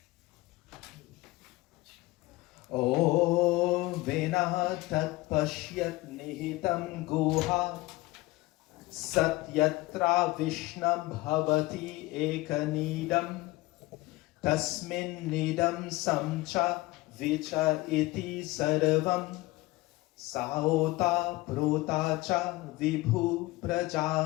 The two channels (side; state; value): right; quieter; 20.3 dB